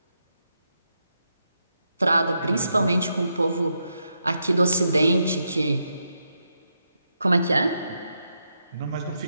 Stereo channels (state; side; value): inverted; both; correlation -0.83